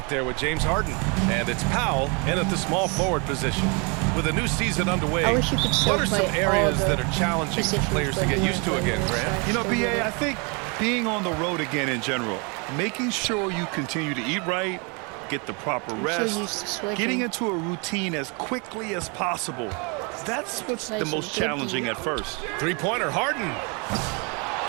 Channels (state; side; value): quieter; left; 32.5 dB